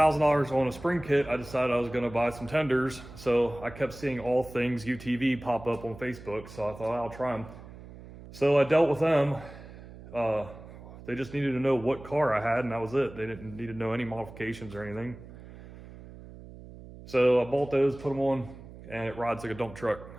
on a spring kit, I decided I was gonna buy some tenders. So I kept seeing All Things UTV pop up on Facebook, so I thought I'll try them. So I dealt with them. They just needed to know what car I had, and that was it. They didn't need to know any modifications or anything. So I bought those, put them on, and it rides like a dump truck.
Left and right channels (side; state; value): right; noise; hum, 16 dB below the sound